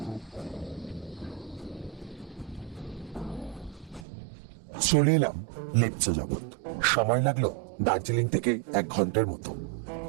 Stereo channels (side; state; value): left; drops out; at 4.0 s